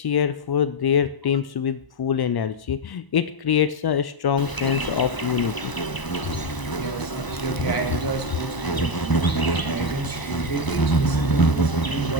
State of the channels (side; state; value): right; late; 1.0 ms